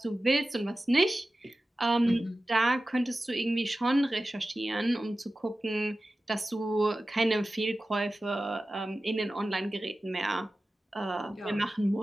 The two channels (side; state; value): both; normal; correlation 0.95